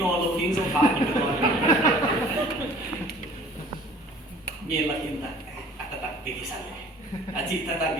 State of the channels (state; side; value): normal; both; correlation 0.49